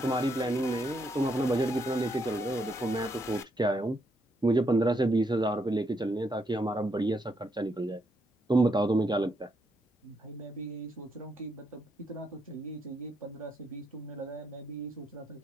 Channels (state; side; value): normal; both; correlation 0.77